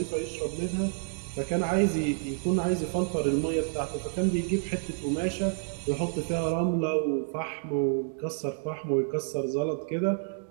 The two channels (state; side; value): silent; left; digital silence